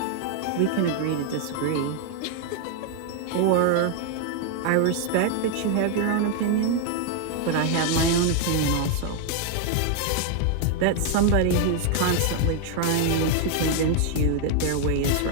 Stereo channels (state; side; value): different; both; correlation 0.00